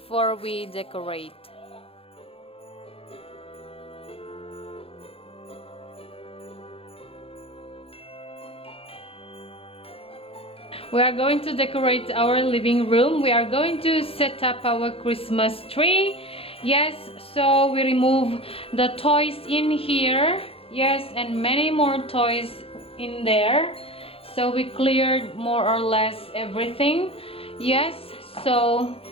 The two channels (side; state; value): right; late; 0.27 ms